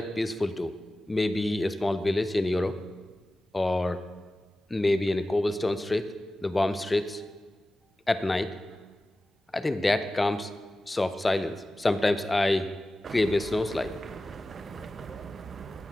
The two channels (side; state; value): both; normal; correlation 0.95